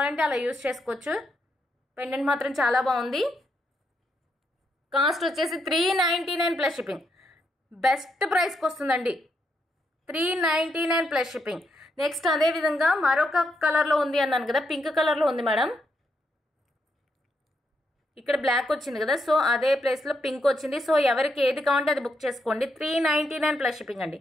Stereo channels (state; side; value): normal; both; correlation 0.79